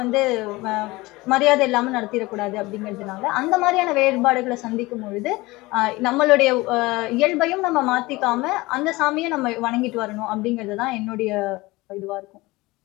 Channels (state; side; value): quieter; right; 21.2 dB